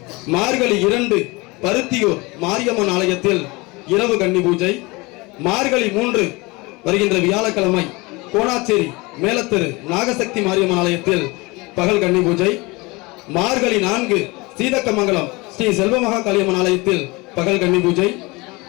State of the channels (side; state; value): right; quieter; 24.6 dB